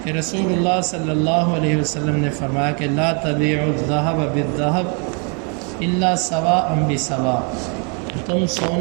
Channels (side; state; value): left; quieter; 36.8 dB